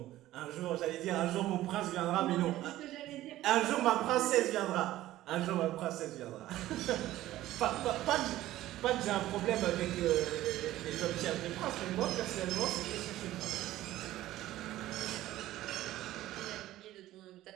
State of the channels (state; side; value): quieter; left; 15.0 dB